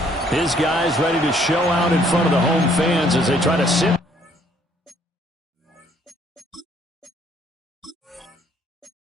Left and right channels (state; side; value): normal; both; correlation 0.64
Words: His guys ready to show out in front of the home fans as they try to sit.